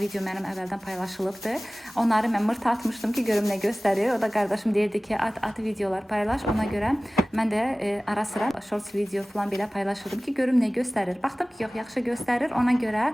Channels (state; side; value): normal; both; correlation 0.98